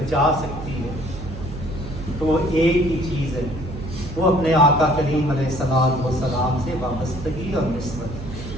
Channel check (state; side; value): noise; right; hum, 10 dB below the sound